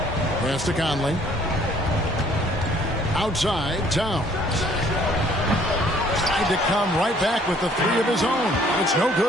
Pass to Conley. Outside, Towns. Tried to come right back with the 3 of his own. It's no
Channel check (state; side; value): normal; both; correlation 0.60